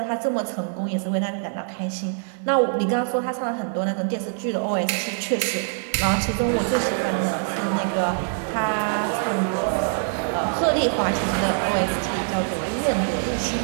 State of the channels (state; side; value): silent; left; digital silence